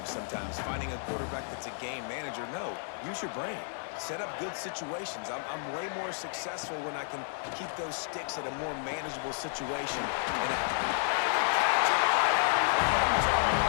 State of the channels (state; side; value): silent; right; digital silence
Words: sometimes, finding a quarterback that's a game manager. No, use your brain. Set up good situations. I'm way more successful when I can keep those sticks at a more manageable situation. And